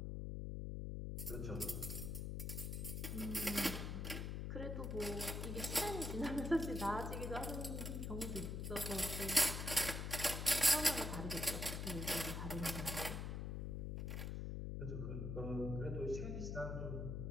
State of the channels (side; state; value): left; noise; hum, 3 dB below the sound